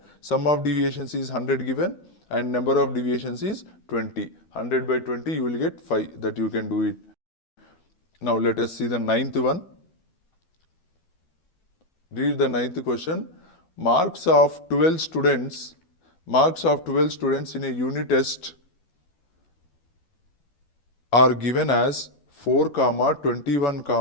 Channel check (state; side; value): late; right; 12 ms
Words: Sum of deviations is 100 given and number of deviations is 20. 100 by 20 you will get 5, that you can do it. Now let us see the ninth one. Read the ninth question. Marks of 12 students in a unit test are given as 4, 21,